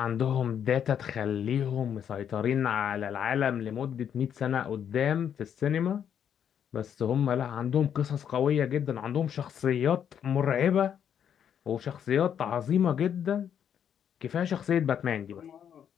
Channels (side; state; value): right; quieter; 8.7 dB